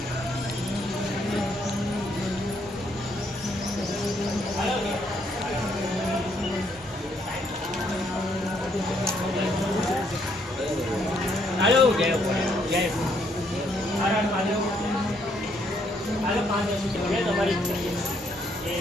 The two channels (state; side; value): normal; both; correlation 0.71